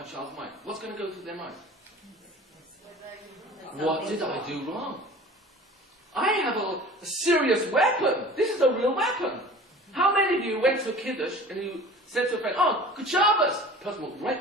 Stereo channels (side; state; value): both; normal; correlation 0.42